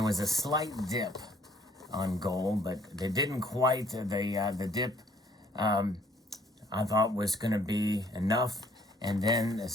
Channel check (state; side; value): normal; both; correlation 0.61